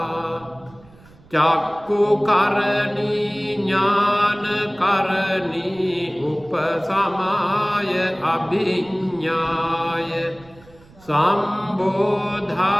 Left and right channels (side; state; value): right; noise; rumble, 25 dB below the sound